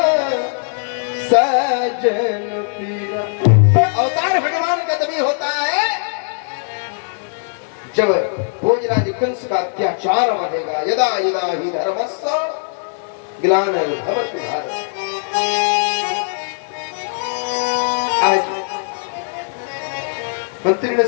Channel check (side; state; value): right; silent; digital silence